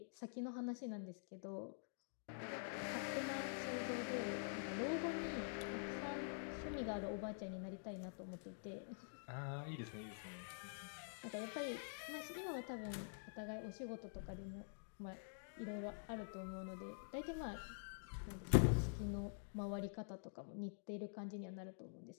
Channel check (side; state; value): right; silent; digital silence